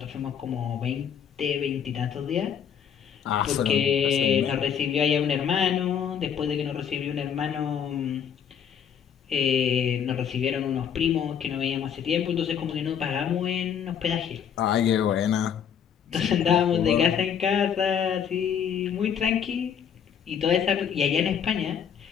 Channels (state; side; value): quieter; right; 8.1 dB